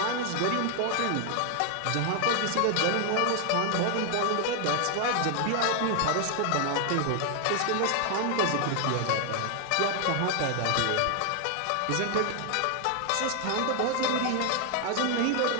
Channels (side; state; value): both; different; correlation 0.00